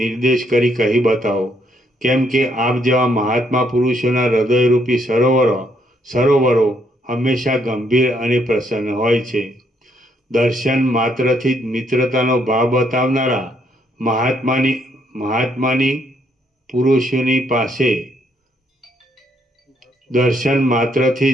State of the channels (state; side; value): normal; both; correlation 0.72